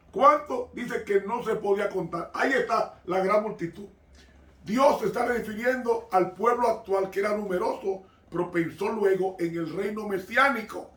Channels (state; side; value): identical; both; correlation 1.00